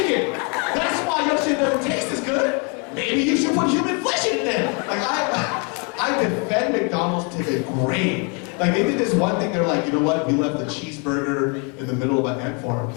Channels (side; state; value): right; quieter; 35.2 dB